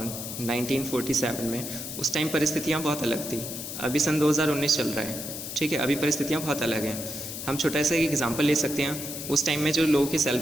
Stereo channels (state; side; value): noise; left; hiss, 7 dB below the sound